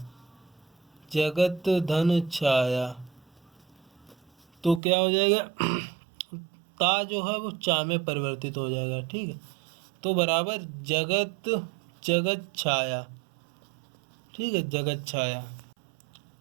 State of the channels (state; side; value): drops out; left; at 4.8 s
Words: जगत धन छाया, तो क्या हो जाएगा, ता जो है वो चा में परिवर्तित हो जाएगा। ठीक है, तो बराबर जगत जगत छाया। ठीक है, जगत छाया।